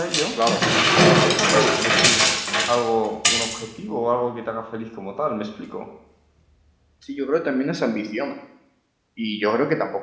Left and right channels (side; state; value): both; identical; correlation 1.00